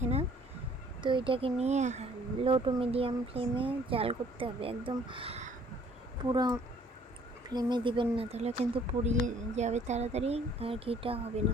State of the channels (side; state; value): both; normal; correlation 0.58